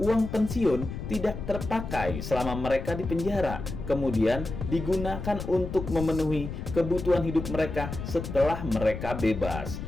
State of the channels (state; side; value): noise; left; rumble, 7 dB below the sound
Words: pensiun tidak terpakai selama mereka di penjara, kemudian digunakan untuk memenuhi kebutuhan hidup mereka setelah mereka bebas.